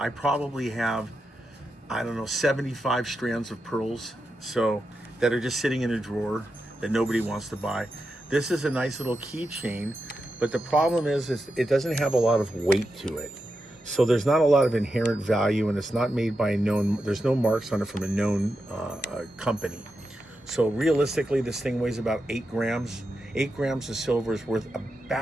probably have, I don't know, 75 strands of pearls so that are just sitting in a drawer that nobody wants to buy. This is a nice little keychain, but the problem is it doesn't have a lot of weight to it. So there's not a lot of inherent value, and it's not made by a known, there's no marks on it from a known company. So realistically, this thing weighs about 8 grams. 8 grams of silver is worth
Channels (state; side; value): normal; both; correlation 0.88